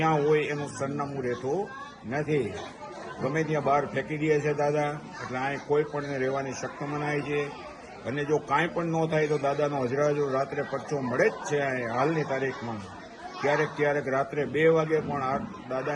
હોય એનું સરનામું રહેતું નથી. ગમે ત્યાં બહાર ફેંકી દે છે દાદા. એટલે અહીં કોઈ પણ રહેવાની શક્ત મનાય છે અને જો કાંઈ પણ ન થાય તો દાદાનો હજુ રાત્રે પરચો મળે જ છે. હાલની તારીખમાં ક્યારેક રાત્રે 2 વાગે પણ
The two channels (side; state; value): both; identical; correlation 1.00